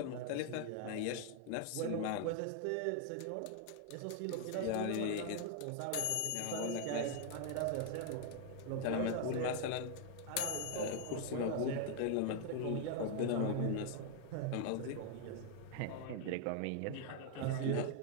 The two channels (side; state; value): both; different; correlation 0.00